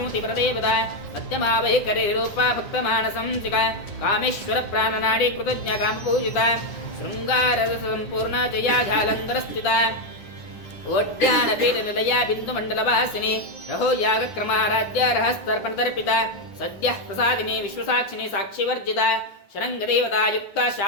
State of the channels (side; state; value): right; late; 10 ms